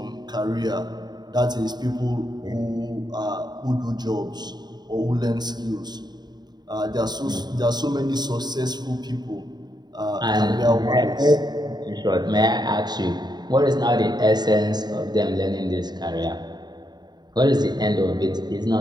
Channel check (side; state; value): left; late; 0.20 ms